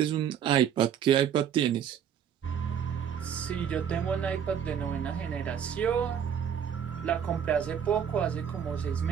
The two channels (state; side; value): quieter; left; 8.5 dB